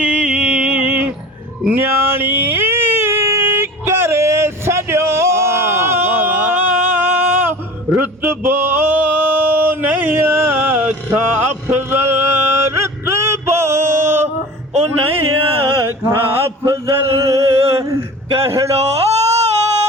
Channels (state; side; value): normal; both; correlation 0.38